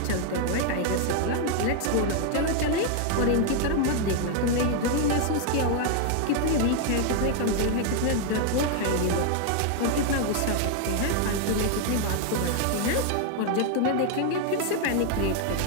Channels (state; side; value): different; both; correlation 0.00